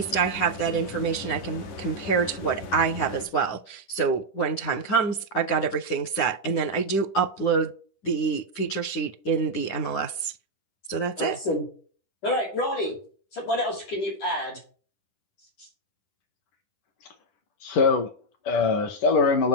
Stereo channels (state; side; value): late; right; 10 ms